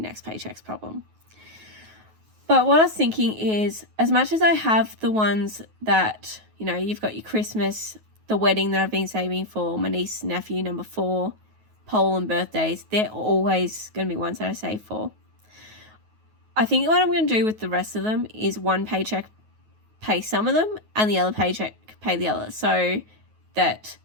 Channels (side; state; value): left; late; 9.3 ms